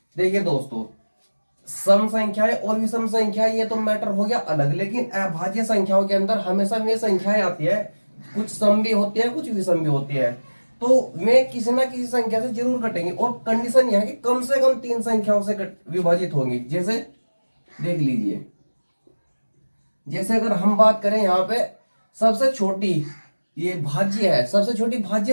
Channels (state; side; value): inverted; both; correlation -1.00